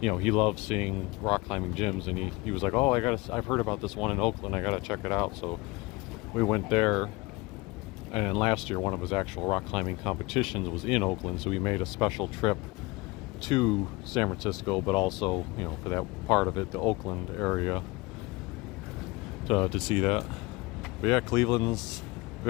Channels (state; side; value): quieter; right; 23.4 dB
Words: he loves seeing rock climbing gyms, and he was like, oh, I've heard about this one in Oakland, I gotta check it out. So we went there, and last year one of his actual rock climbing competitions was in Oakland, so we made a special trip to San Francisco, but also, for that part of it, the Oakland area, to see that. But yeah, Cleveland's